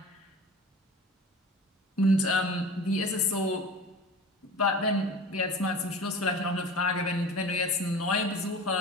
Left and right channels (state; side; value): normal; both; correlation 0.37